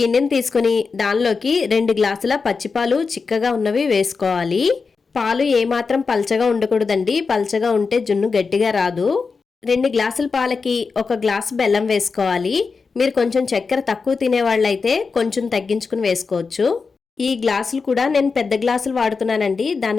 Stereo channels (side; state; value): right; quieter; 4.8 dB